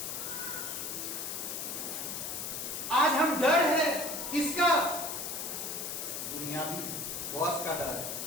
आज हम डर है किसका? दुनियावी बॉस का डर,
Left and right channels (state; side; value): noise; left; hiss, 4 dB below the sound